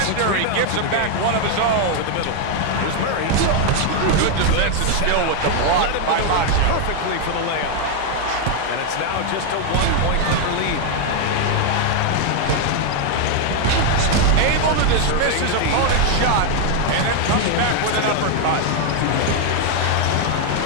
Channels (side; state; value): both; different; correlation 0.00